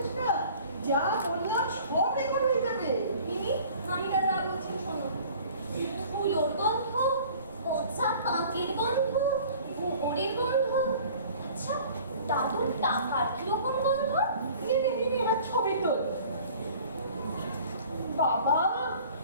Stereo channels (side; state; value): both; inverted; correlation -0.48